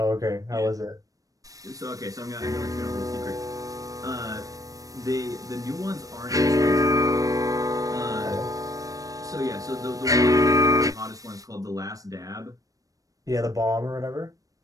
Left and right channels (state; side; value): late; left; 0.17 ms